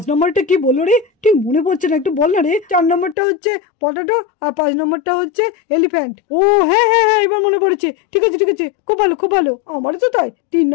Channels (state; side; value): drops out; right; at 3.2 s